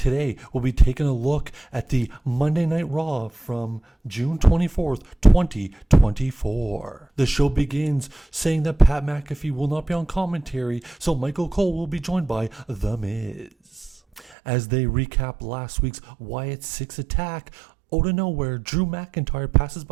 we'll be taking a look at the Monday Night Raw from June 24th, 2024. The show begins saying that Pat McAfee will not be on commentary, so Michael Cole will be joined by The Miz. As they recap last week's Wyatt 6 attack, out of nowhere, Drew McIntyre passes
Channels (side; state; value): left; drops out; at 14.2 s